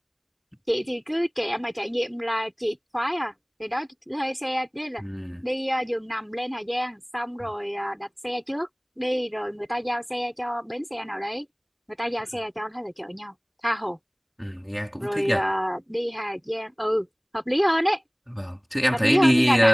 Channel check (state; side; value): identical; both; correlation 1.00